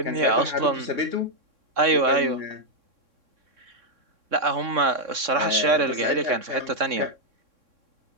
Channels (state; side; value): late; left; 3.6 ms